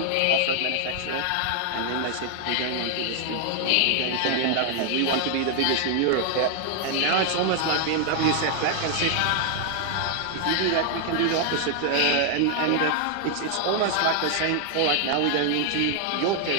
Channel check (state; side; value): different; both; correlation 0.00